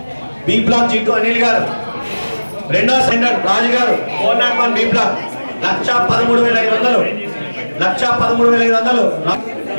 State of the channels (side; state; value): both; inverted; correlation -1.00